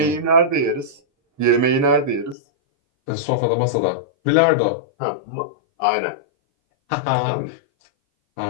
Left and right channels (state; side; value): drops out; right; at 2.4 s